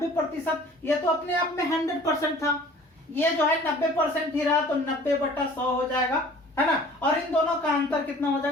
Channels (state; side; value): normal; both; correlation 0.49